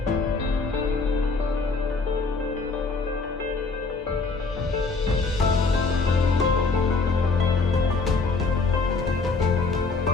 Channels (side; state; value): right; quieter; 4.0 dB